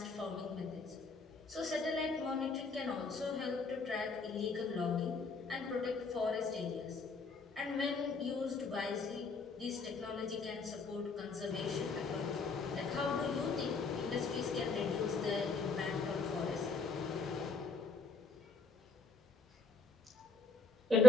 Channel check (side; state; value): right; quieter; 4.8 dB